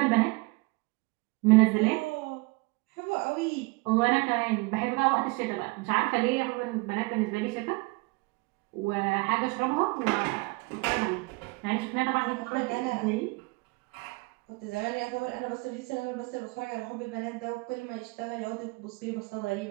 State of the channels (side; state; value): left; quieter; 25.9 dB